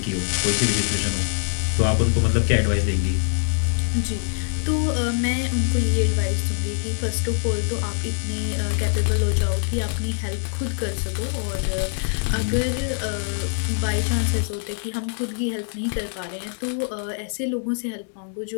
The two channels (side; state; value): right; silent; digital silence